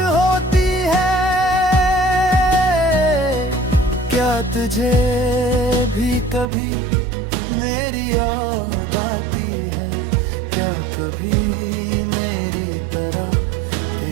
है। क्या तुझे भी कभी मेरी याद आती है? क्या कभी मेरी तरह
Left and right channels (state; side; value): drops out; left; at 6.5 s